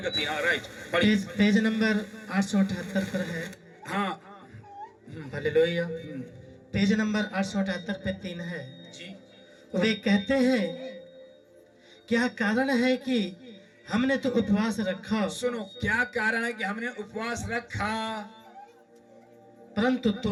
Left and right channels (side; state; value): both; identical; correlation 1.00